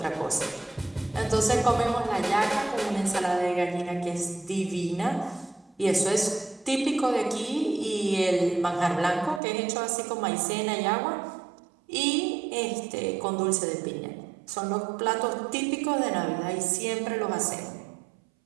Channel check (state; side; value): drops out; left; at 9.4 s